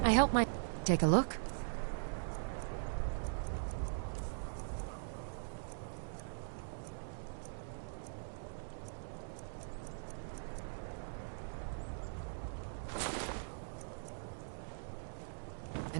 I help my... Take a look.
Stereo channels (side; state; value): left; silent; digital silence